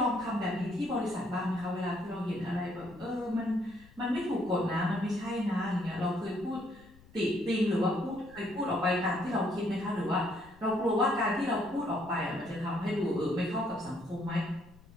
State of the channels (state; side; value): noise; left; rumble, 24 dB below the sound